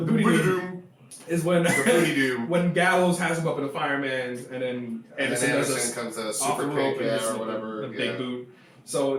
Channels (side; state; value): both; identical; correlation 1.00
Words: Booty Doom is when when Gallows has him up in the fireman's, and then Anderson comes to a super kick or whatever, the big boot.